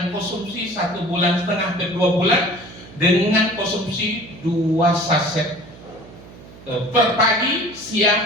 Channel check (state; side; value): noise; right; hum, 20 dB below the sound